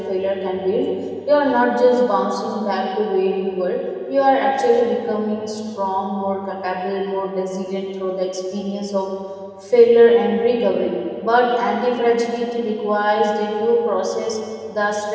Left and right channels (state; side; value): identical; both; correlation 1.00